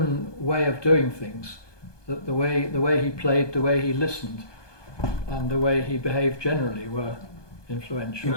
way of doing things, the way he played, the way he listened, and the way he behaved generally were influential. He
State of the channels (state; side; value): late; right; 1.2 ms